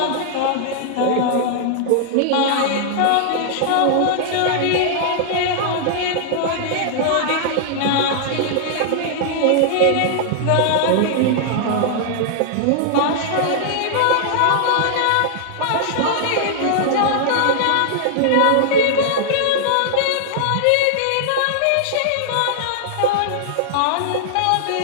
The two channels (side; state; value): both; different; correlation -0.01